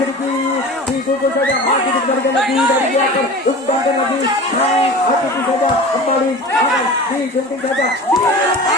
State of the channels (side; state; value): both; normal; correlation 0.35